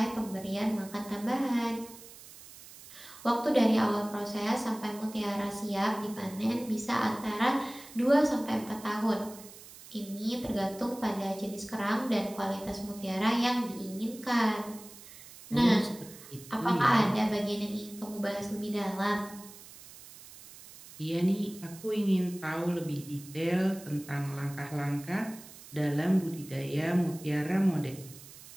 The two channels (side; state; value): right; noise; hiss, 18 dB below the sound